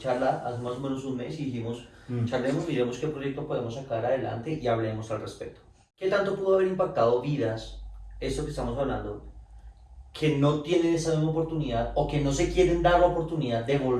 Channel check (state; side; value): identical; both; correlation 1.00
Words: hace más o menos un mes, y dijimos, charlemos, miremos qué proyecto podemos sacar adelante y hablemos al respecto. ¿Qué tanto pudo haber impactado vidas, esto que estamos hablando, que no tienen esa misma oportunidad o que no se quieren dar la oportunidad de